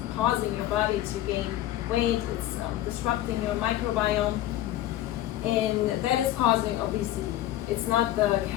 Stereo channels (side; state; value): right; quieter; 13.8 dB